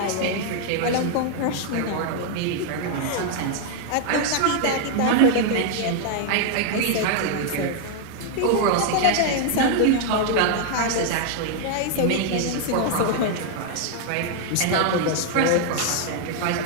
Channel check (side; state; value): both; different; correlation 0.00